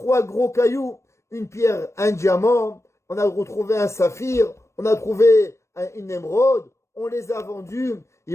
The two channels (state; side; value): late; right; 0.13 ms